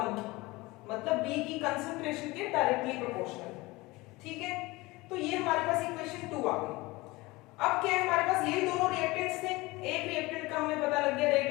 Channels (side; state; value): right; quieter; 21.8 dB